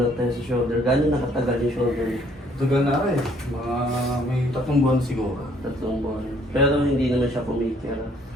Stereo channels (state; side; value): normal; both; correlation 0.63